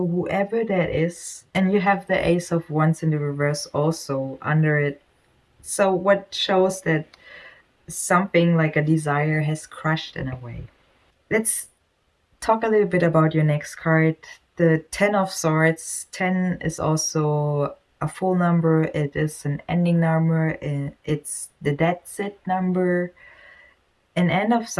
whoever that is, and you have the Ace of Wands in the reverse also under it. So what shows that something like a desire has crushed in a way. Let's talk a little bit about your next card. The Ten of Swords. 10 is also a full number. It is an ending number. It's the that's it number, an end of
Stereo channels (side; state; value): both; identical; correlation 1.00